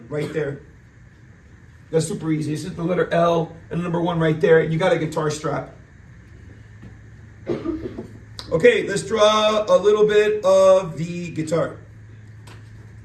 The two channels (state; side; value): identical; both; correlation 1.00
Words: right there. That's super easy. It's just the letter L and the number 1 right there. You got a guitar strap. Okay, let's draw a little bit of the guitar.